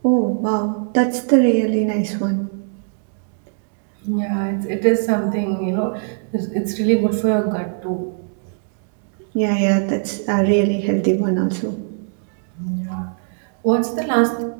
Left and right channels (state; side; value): silent; left; digital silence